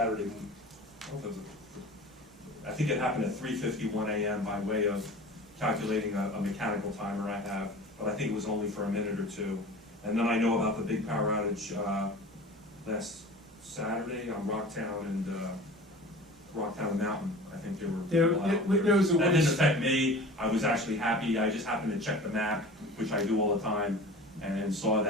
I think it happened at 3:51 a.m. by way of calculating a mechanical timer I have, but I think it was only for a minute or 2. And then I know about the big power outage last Saturday on Rocktown and Mountain. I think there was that didn't affect me. I was actually happy. I just happened to check the map, which I do all the time, and saw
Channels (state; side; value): normal; both; correlation 0.39